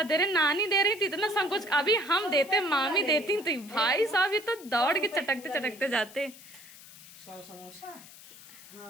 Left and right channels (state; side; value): noise; left; hiss, 19 dB below the sound